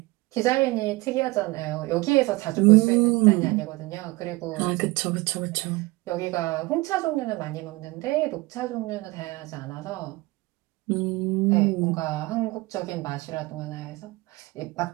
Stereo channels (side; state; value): left; quieter; 21.9 dB